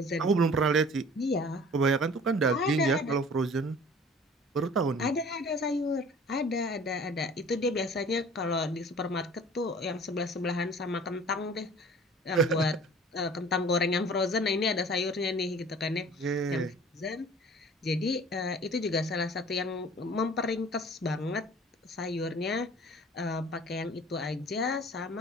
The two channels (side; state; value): both; normal; correlation 0.47